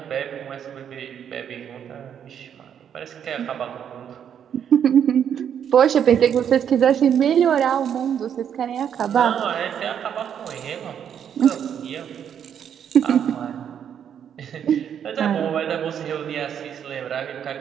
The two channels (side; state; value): left; quieter; 8.7 dB